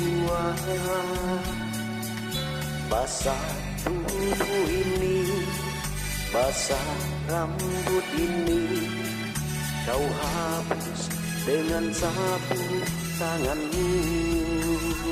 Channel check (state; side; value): identical; both; correlation 1.00